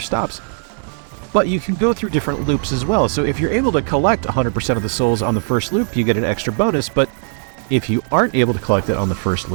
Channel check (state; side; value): silent; left; 61 dB below the other